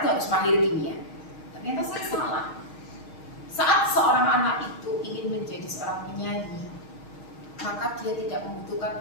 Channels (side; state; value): right; late; 6.4 ms